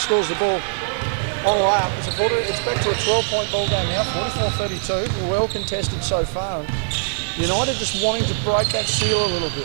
the ball on the way up. It's back to a 12-point ball game now, 44-32. Well contested so far. United just wanting to break that seal a little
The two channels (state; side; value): silent; left; digital silence